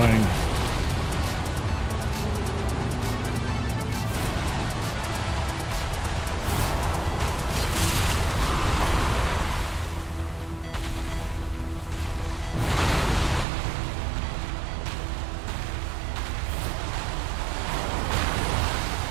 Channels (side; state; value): left; drops out; at 13.5 s